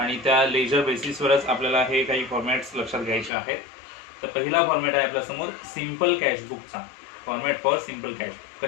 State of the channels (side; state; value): right; drops out; at 3.3 s